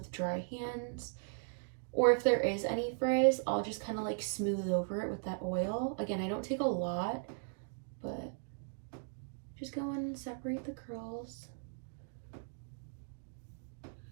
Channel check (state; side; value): silent; left; digital silence